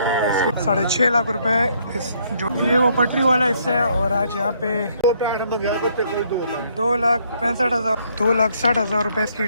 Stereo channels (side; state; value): both; inverted; correlation -0.68